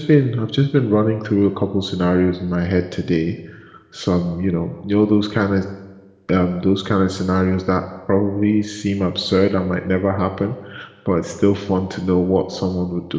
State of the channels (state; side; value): identical; both; correlation 1.00